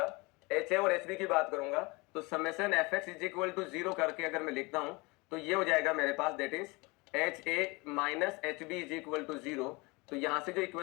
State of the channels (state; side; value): quieter; right; 25.6 dB